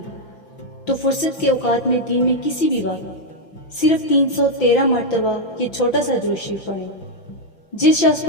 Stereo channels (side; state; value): right; late; 5.9 ms